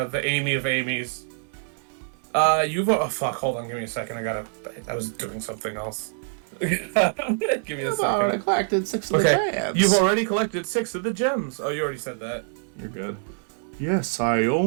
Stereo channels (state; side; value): silent; left; digital silence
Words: Amy of Amy's. Fuck, hold on, give me a second, I was doing something else. Give me a second. I collected 6 of the gems. You've already collected 6 of the gems. Oh, you already said that. You're good. Yes, I